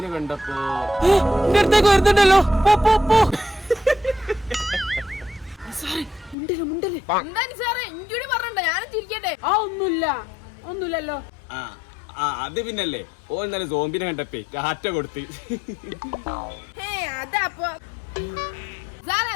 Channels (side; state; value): right; drops out; at 6.4 s